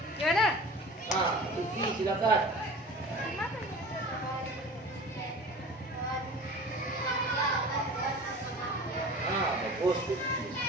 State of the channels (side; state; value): both; normal; correlation 0.39